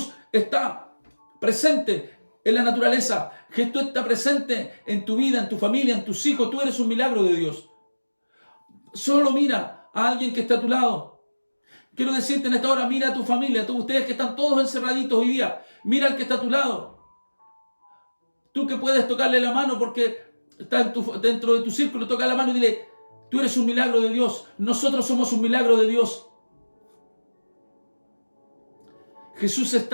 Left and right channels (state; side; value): inverted; both; correlation -1.00